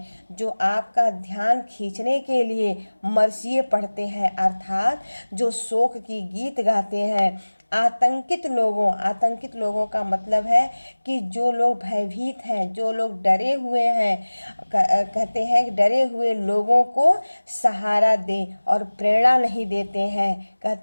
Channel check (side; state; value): both; inverted; correlation -1.00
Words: जो आपका ध्यान खींचने के लिए मरसिए पढ़ते हैं, अर्थात जो शोक की गीत गाते हैं। आतंकित लोगों का मतलब है कि जो लोग भयभीत हैं, जो लोग डरे हुए हैं, कहते हैं कि डरे हुए लोगों को सहारा दें और प्रेरणा नहीं देते हैं।